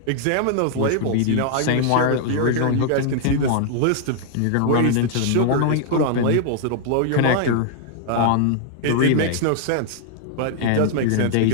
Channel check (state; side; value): different; both; correlation 0.00